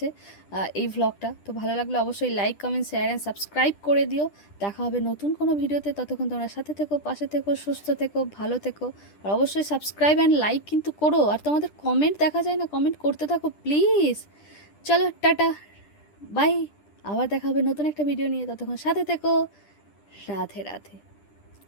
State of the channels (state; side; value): late; right; 10 ms